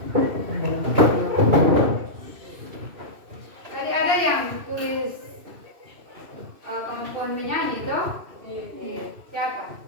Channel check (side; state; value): left; late; 2.7 ms